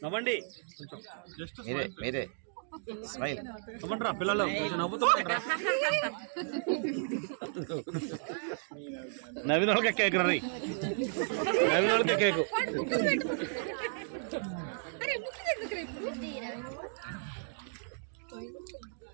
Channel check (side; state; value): left; silent; digital silence